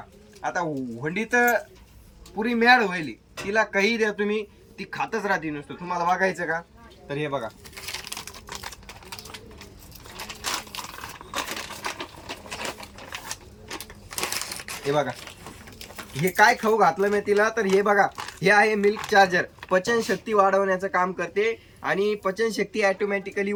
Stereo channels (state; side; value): identical; both; correlation 1.00